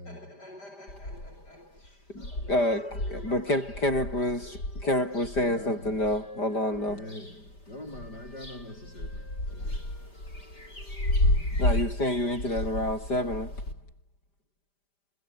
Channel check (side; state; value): right; late; 5.0 ms